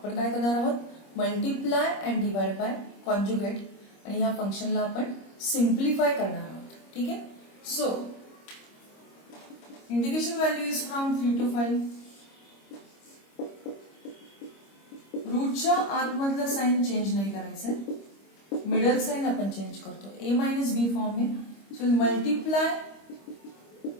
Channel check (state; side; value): late; right; 25 ms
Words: काय करणार आहोत, multiply and divide by conjugate आणि ह्या फंक्शनला आपण सिम्प्लिफाय करणार आहोत. ठीक आहे. So integration value is from 3 to 5. रूटच्या आतमधलं साइन चेंज नाही करायचंय, मिडल साइन आपण चेंज करतो. a मायनस बी फॉर्म आहे. So multiply